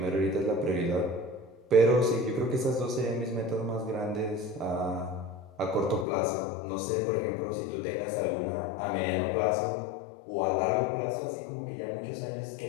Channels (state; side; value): drops out; right; at 6.1 s